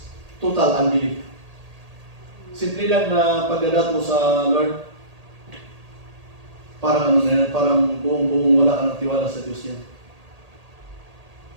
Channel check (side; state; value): left; late; 1.8 ms